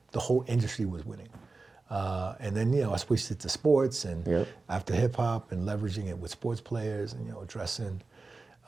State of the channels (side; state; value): left; quieter; 3.7 dB